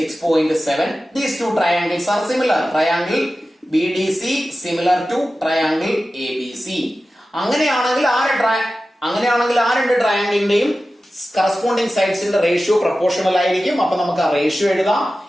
these two triangles are similar. Triangle BDC similar to triangle ABC. അങ്ങനെയാണെങ്കിൽ ആ രണ്ട് ട്രയാംഗിളിന്റെയും കറസ്പോണ്ടിങ് സൈഡ്സിന്റെ റേഷ്യോ പ്രൊപ്പോർഷണൽ ആയിരിക്കും. അപ്പൊ നമുക്ക് ആ റേഷ്യോ എഴുതാം.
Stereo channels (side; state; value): both; normal; correlation 0.94